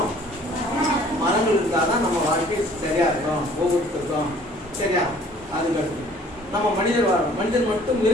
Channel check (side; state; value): both; normal; correlation 0.54